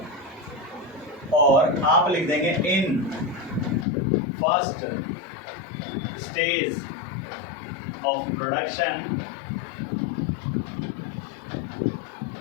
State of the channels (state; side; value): drops out; right; at 3.9 s